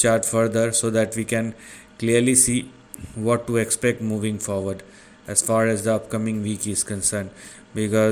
further so that we can clearly see what to expect moving forward as far as the upcoming week is concerned,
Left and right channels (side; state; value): both; identical; correlation 1.00